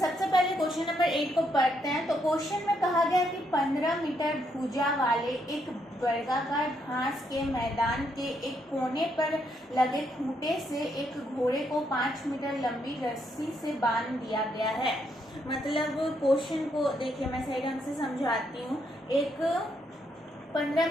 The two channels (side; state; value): both; normal; correlation 0.76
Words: पहले क्वेश्चन नंबर 8 को पढ़ते हैं। तो क्वेश्चन में कहा गया कि 15 मीटर भुजा वाले एक वर्गाकार घास के मैदान के एक कोने पर लगे खूंटे से एक घोड़े को 5 मीटर लंबी रस्सी से बांध दिया गया है। मतलब क्वेश्चन को देखिए, मैं सही ढंग से समझाती हूँ। एक 15